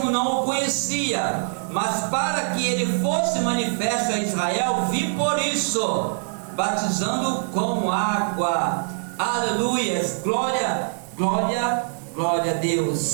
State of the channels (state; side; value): silent; left; 63 dB below the other